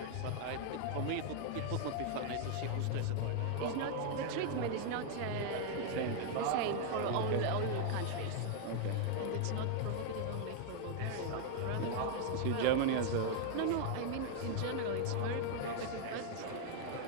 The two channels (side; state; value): both; different; correlation 0.00